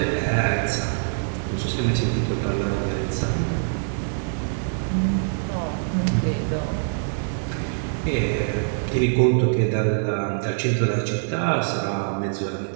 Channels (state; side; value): silent; left; digital silence